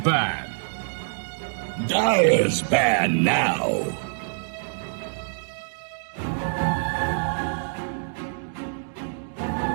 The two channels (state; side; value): silent; left; digital silence